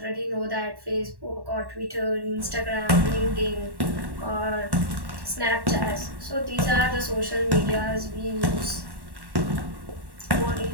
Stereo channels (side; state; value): left; late; 1.1 ms